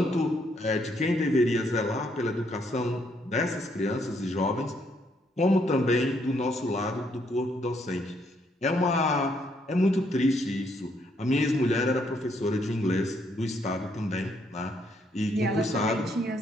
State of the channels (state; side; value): normal; both; correlation 0.72